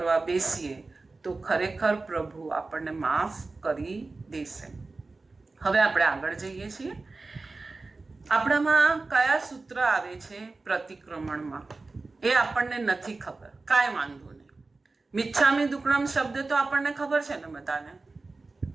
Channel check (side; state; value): left; quieter; 3.6 dB